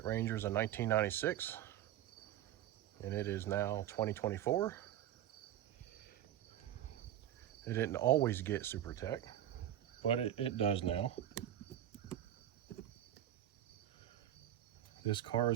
Ranger is a 1996 and it is now 2024. It didn't always get SuperTech, but it does now. This car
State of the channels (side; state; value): left; quieter; 11.7 dB